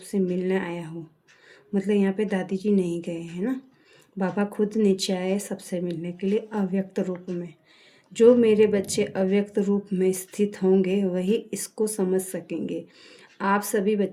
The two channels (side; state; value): both; identical; correlation 1.00